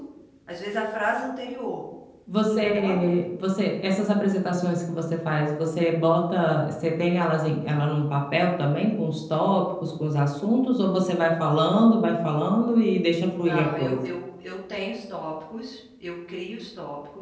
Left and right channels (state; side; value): identical; both; correlation 1.00